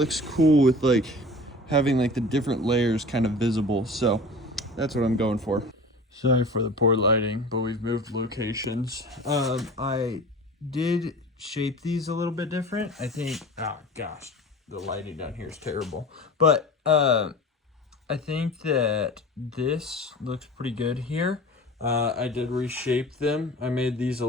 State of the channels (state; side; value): normal; both; correlation 0.38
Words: cool with like having like the different layers kind of visible. So that's what I'm going for. Sorry for the poor lighting, but we've moved locations. I did shape these a little bit different. I think, oh gosh, the lighting down here is terrible. But I think that this looks pretty good here. I did reshape them. I made these a